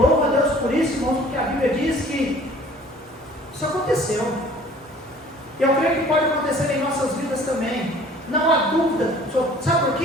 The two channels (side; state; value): both; normal; correlation 0.51